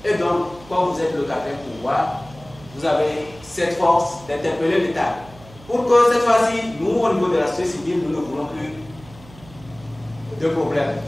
Et donc, quand vous êtes le quatrième pouvoir, vous avez cette force d'interpeller l'État. Pour que cette fois-ci, nous, au niveau de la société civile, nous ne voulons plus de problèmes.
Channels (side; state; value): right; noise; hum, 21 dB below the sound